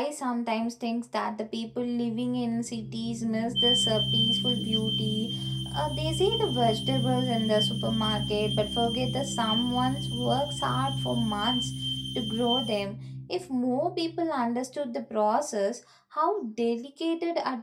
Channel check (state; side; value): identical; both; correlation 1.00